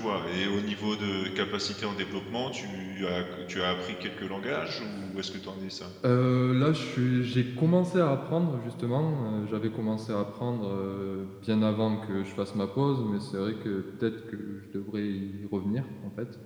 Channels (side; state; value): both; identical; correlation 1.00